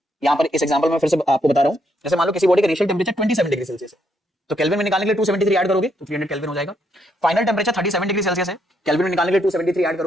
यहाँ पर इस एग्जांपल में फिर से आपको बता रहा हूँ, जैसे मान लो किसी बॉडी का इनिशियल टेम्परेचर 27 डिग्री सेल्सियस है, तो केल्विन में निकालने के लिए 273 ऐड करोगे तो 300 केल्विन हो जाएगा। फाइनल टेम्परेचर 37 डिग्री सेल्सियस है, केल्विन में निकालने के लिए 273 ऐड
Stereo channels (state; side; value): normal; both; correlation 0.75